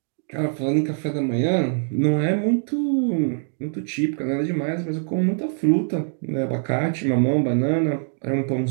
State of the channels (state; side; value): silent; left; digital silence